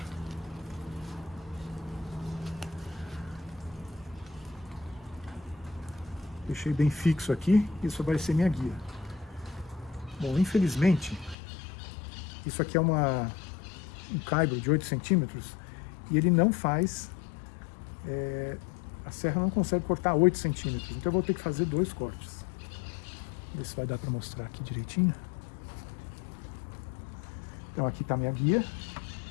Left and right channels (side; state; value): right; drops out; at 11.4 s